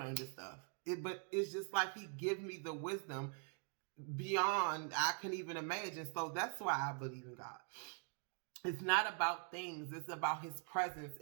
of this stuff. But it's just like he give me the wisdom beyond I can even imagine. So that's why I believe in God. It's not about things. It's about his presence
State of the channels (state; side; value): quieter; left; 39.7 dB